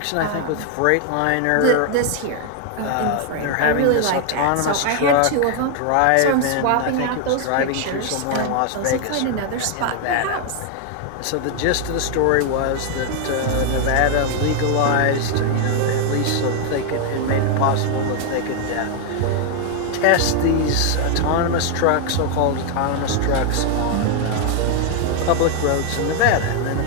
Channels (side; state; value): both; different; correlation 0.00